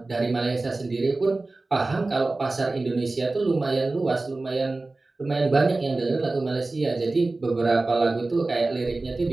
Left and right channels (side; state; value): left; quieter; 3.2 dB